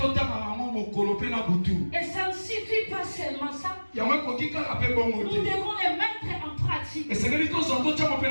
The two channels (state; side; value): inverted; both; correlation -1.00